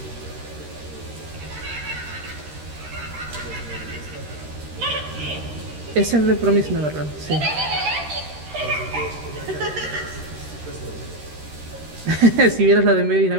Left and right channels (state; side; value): late; left; 13 ms